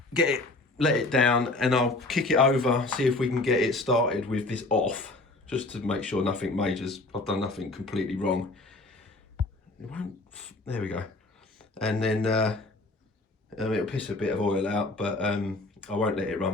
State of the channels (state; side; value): quieter; right; 3.0 dB